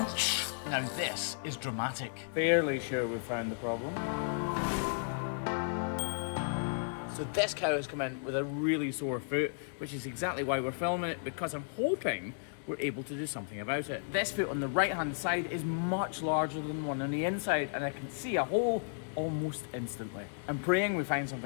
Now this is dramatic. Fairly sure we found the problem. So this cow has come in with a really sore foot, which is exactly why we're filming it, because I'm hoping we're able to do something about it. This foot on the right hand side is much larger than the one on the inside, and I can see a hole almost instantly. I'm praying we find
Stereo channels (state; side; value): silent; right; 55 dB below the other